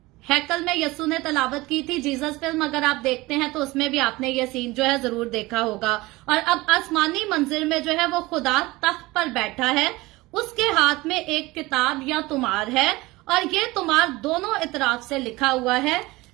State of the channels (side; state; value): left; quieter; 20.9 dB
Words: हैकल में यस्सु ने तलावत की थी। जीसस फिल्म अगर आप देखते हैं तो उसमें भी आपने ये सीन जो है जरूर देखा होगा। और अब आसमानी मंजिल में जो है वो खुदा तख्त पर बैठा है, उसके हाथ में एक किताब या तुमार है और ये तुमार दोनों इतराफ से लिखा हुआ है।